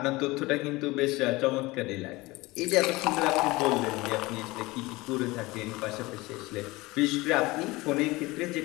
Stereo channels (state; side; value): quieter; right; 21.5 dB